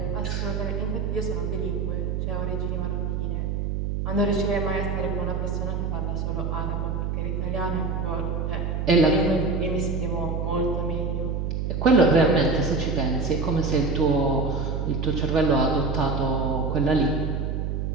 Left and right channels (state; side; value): noise; right; hum, 1 dB below the sound